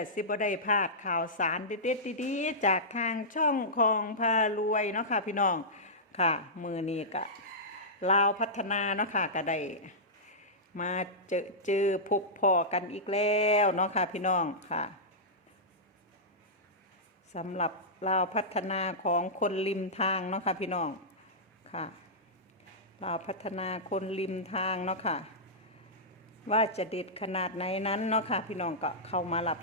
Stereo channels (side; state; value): both; normal; correlation -0.14